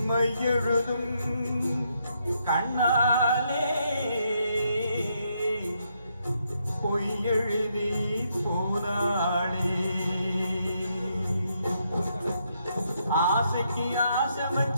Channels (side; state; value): both; inverted; correlation -0.76